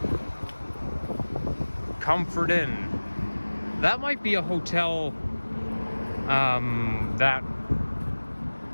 Comfort Inn. That might be a hotel that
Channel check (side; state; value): both; inverted; correlation -1.00